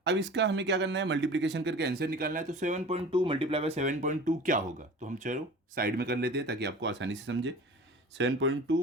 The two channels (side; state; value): both; normal; correlation 0.39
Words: अब इसका हमें क्या करना है, मल्टीप्लिकेशन करके आंसर निकालना है। तो 7.2 मल्टीप्लाई बाय 7.2 क्या होगा, तो हम चलो साइड में कर लेते हैं ताकि आपको आसानी से समझे।